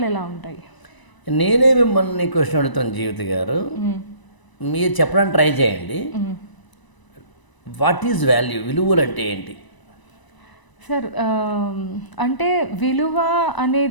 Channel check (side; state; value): right; late; 1.0 ms